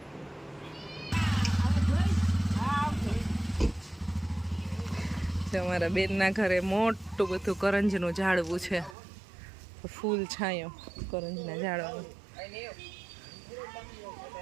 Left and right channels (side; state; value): left; drops out; at 9.0 s